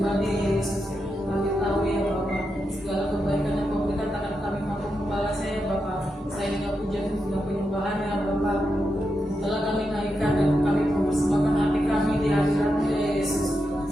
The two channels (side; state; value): both; normal; correlation 0.86